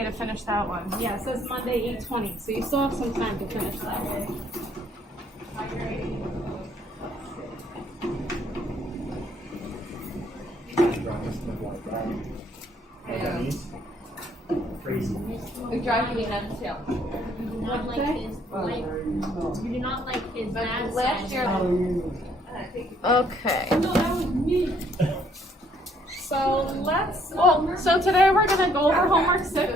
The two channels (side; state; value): both; normal; correlation 0.65